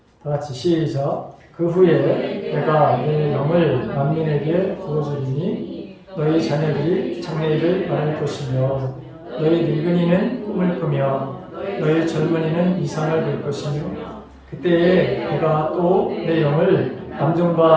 다 같이 시작. 그 후에 내가 내 영을 만민에게 부어주리니 너희 자녀들이 장래일을 말할 것이며 너희 늙은이는 꿈을 꾸며 너희 젊은이는 이상을 볼 것이며 그때에 내가 또 내 영을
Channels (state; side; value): identical; both; correlation 1.00